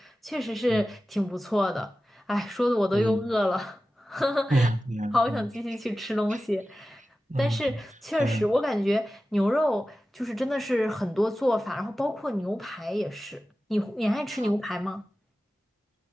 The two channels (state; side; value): normal; both; correlation 0.95